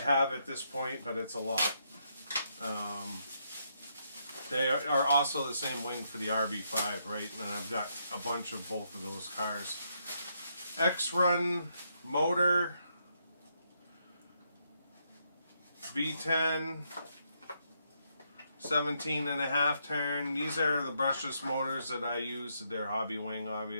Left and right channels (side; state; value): both; inverted; correlation -0.77